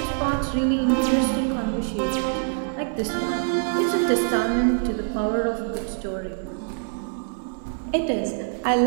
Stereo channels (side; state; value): left; silent; digital silence